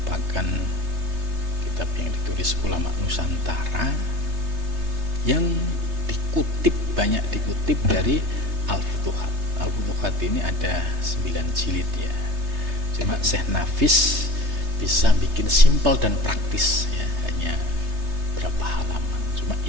kitab yang ditulis ulama Nusantara yang banyak dikutip dari Al-Futuhat. Al-Futuhat ini ada 9 jilid ya. Cuma Syekh Nafis bisa bikin simpel dan praktis ya, hanya berapa halaman. Cuma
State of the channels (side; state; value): left; late; 3.3 ms